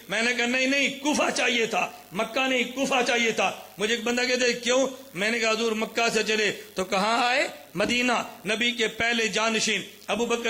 میں نے کہا نہیں، کوفہ چاہیے تھا، مکہ نہیں، کوفہ چاہیے تھا۔ مجھے ایک بندہ کہتے ہیں کیوں؟ میں نے کہا حضور مکہ سے چلے تو کہاں آئے؟ مدینہ۔ نبی کے پہلے جانشین ابو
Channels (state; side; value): identical; both; correlation 1.00